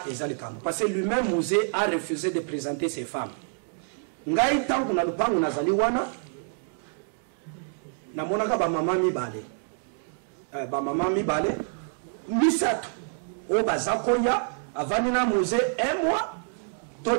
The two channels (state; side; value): silent; left; 60 dB below the other